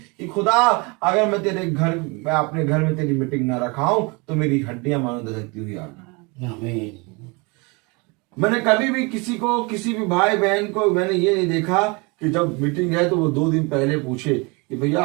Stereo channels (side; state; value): left; quieter; 28.6 dB